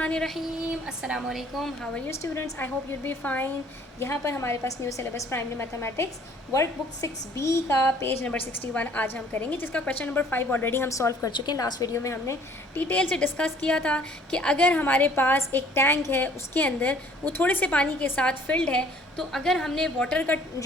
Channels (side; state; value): both; normal; correlation 0.57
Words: अस्सलाम वालेकुम। How are you students? I hope you'll be fine. यहाँ पर हमारे पास new syllabus primary mathematics workbook 6B का पेज नंबर 61 आज हम करेंगे, जिसका क्वेश्चन नंबर 5 ऑलरेडी हम सॉल्व कर चुके हैं। लास्ट वीडियो में हमने डिटेल से डिस्कस किया था कि अगर हमारे पास एक टैंक है, उसके अंदर वो थोड़े से पानी के साथ फिल्ड है, तो अगर हमने वाटर का